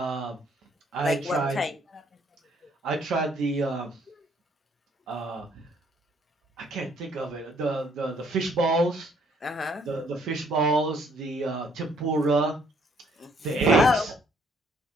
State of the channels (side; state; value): both; normal; correlation 0.65